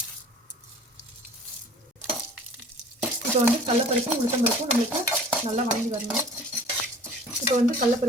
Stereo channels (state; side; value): normal; both; correlation 0.47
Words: இப்போ வந்து கடலப்பருப்பும் உளுத்தம்பருப்பும் நம்மளுக்கு நல்லா வணங்கி வரணும். இப்போ வந்து